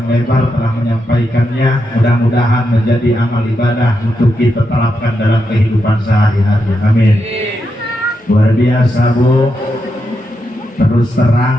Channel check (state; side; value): normal; both; correlation 0.84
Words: lebar telah menyampaikannya. Mudah-mudahan menjadi amal ibadah untuk kita terapkan dalam kehidupan sehari-hari. Amin. Luar biasa Bu. Terus